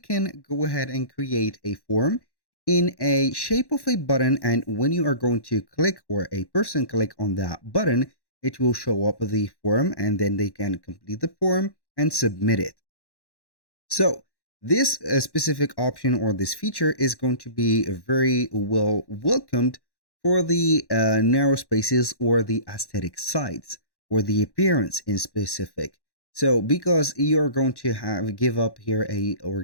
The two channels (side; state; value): right; late; 1.1 ms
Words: go ahead and create a form in a shape of a button, and when you are going to click or a person click on that button, it will show up the form and then they can complete the form and submit it. So this specific option or this feature is going to be very well welcomed for the narrow spaces or the aesthetic sides or the appearance in specific. So because you're going to have give up here a or